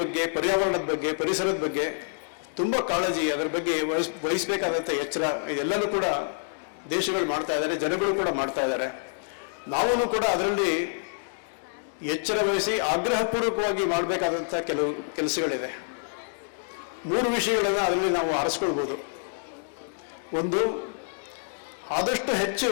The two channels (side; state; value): right; silent; digital silence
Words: ಬಗ್ಗೆ, ಪರ್ಯಾವರಣದ ಬಗ್ಗೆ, ಪರಿಸರದ ಬಗ್ಗೆ ತುಂಬ ಕಾಳಜಿ, ಅದರ ಬಗ್ಗೆ ವಹಿಸಬೇಕಾದಂಥ ಎಚ್ಚರ ಇದೆಲ್ಲನೂ ಕೂಡ ದೇಶಗಳು ಮಾಡ್ತಾ ಇದ್ದಾರೆ, ಜನಗಳು ಕೂಡ ಮಾಡ್ತಾ ಇದ್ದಾರೆ. ನಾವೂ ಕೂಡ ಅದರಲ್ಲಿ ಎಚ್ಚರ ವಹಿಸಿ ಆಗ್ರಹಪೂರ್ವಕವಾಗಿ ಮಾಡಬೇಕಾದಂಥ ಕೆಲವು ಕೆಲಸಗಳಿದೆ. 3 ವಿಷಯಗಳನ್ನು ಅದರಲ್ಲಿ ನಾವು ಆರಿಸ್ಕೊಳ್ಬೋದು. ಒಂದು, ಆದಷ್ಟು ಹೆಚ್ಚು